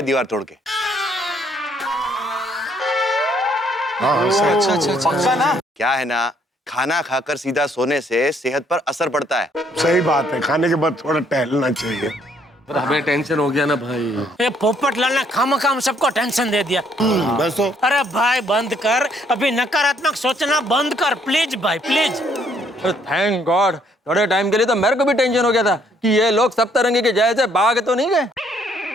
दीवार तोड़ के। अच्छा ना क्या है ना, खाना खाकर सीधा सोने से सेहत पर असर पड़ता है। सही बात है, खाने के बाद थोड़ा टहलना चाहिए। हमें टेंशन हो गया ना भाई। ये पोपटलाल ने खामखाम सबको टेंशन दे दिया। बस तो। अरे भाई बंद कर, अभी नकारात्मक सोचना बंद कर प्लीज भाई प्लीज। थैंक गॉड, थोड़े टाइम के लिए तो मेरे को भी टेंशन हो गया था कि ये लोग सप्तरंगी के जैसे भाग तो नहीं गए।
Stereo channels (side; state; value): both; normal; correlation 0.67